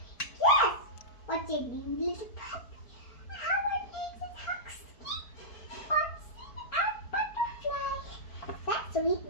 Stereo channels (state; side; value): late; right; 4.5 ms